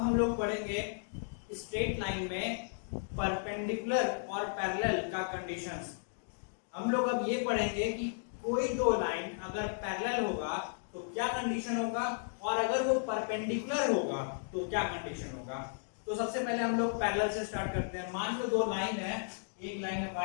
लोग पढ़ेंगे स्ट्रेट लाइन में परपेंडिकुलर और पैरेलल का कंडीशंस। हम लोग अब ये पढ़ेंगे कि कोई दो लाइन अगर पैरेलल होगा तो क्या कंडीशन होगा, और अगर वो परपेंडिकुलर होगा तो क्या कंडीशन होगा। तो सबसे पहले हम लोग पैरेलल से स्टार्ट करते हैं। मान लो दो लाइन है, एक लाइन है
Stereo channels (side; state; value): right; silent; digital silence